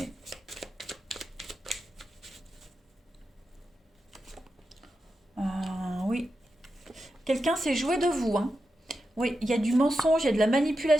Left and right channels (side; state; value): both; normal; correlation 0.89